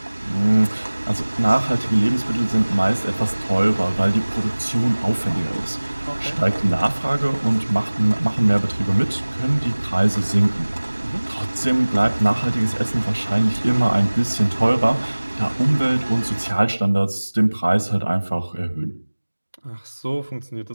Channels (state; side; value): inverted; both; correlation -1.00